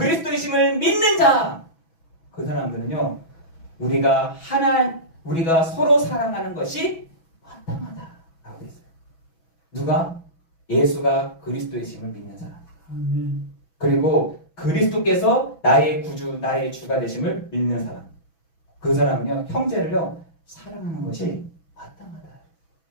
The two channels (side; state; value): right; late; 6.1 ms